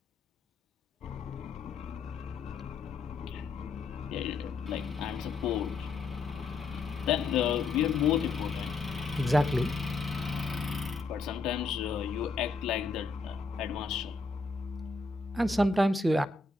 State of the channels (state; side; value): quieter; right; 3.9 dB